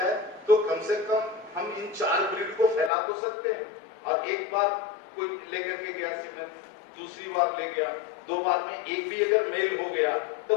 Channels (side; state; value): right; drops out; at 2.9 s